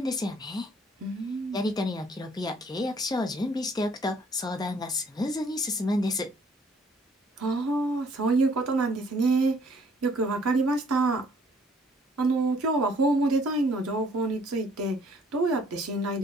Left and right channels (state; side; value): normal; both; correlation 0.61